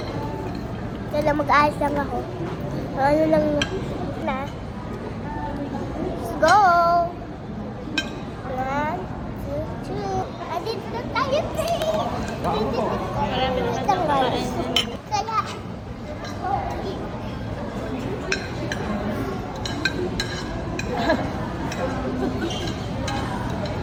Kaya mag-ayos lang ako. Ano lang na. Let's go. 1, 2, 3. Andito na tayo, te. Marami naman Ito, guys. kumakain. Kaya,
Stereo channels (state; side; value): identical; both; correlation 1.00